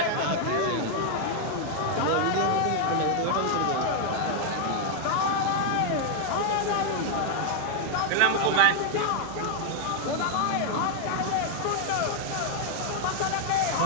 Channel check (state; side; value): different; both; correlation 0.00